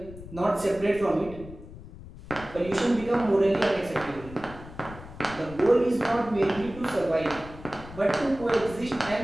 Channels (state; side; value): noise; left; rumble, 15 dB below the sound